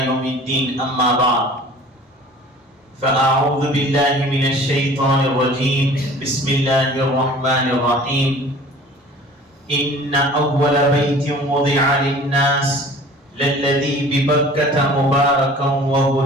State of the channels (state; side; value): normal; both; correlation 0.46